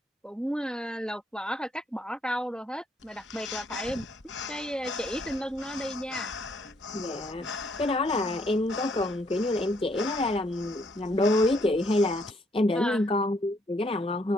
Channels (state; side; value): normal; both; correlation 0.70